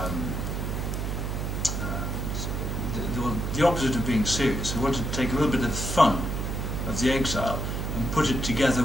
opposite of being serious. We wanted to take a little bit of the fun of the Exile and put it together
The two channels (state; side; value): noise; right; hum, 2 dB below the sound